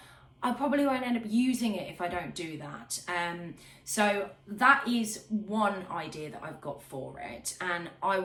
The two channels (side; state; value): both; identical; correlation 1.00